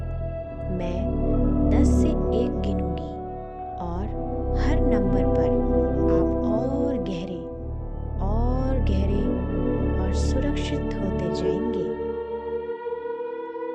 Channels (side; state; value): both; identical; correlation 1.00